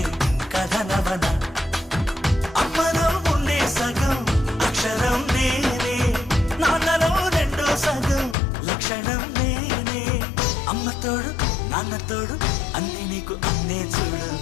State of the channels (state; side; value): drops out; right; at 8.3 s